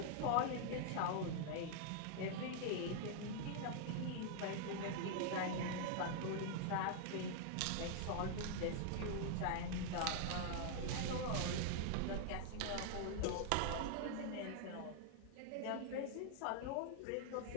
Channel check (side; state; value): both; different; correlation 0.00